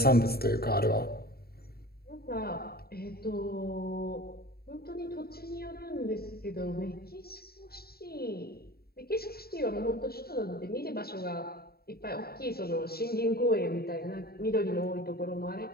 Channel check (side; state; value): right; late; 0.45 ms